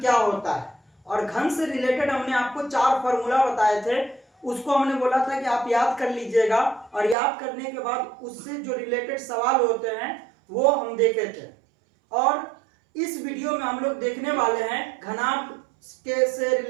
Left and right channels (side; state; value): left; drops out; at 7.2 s